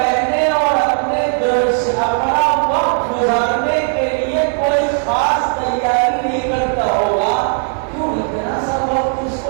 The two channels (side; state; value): left; silent; 59 dB below the other